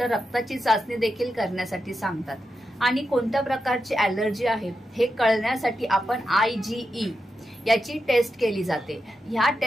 रक्ताची चाचणी देखील करण्यासाठी सांगतात. आणि कोणत्या प्रकारची ॲलर्जी आहे हे कळण्यासाठी आपण IgE याची टेस्ट केली जाते. ह्या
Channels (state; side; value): normal; both; correlation 0.88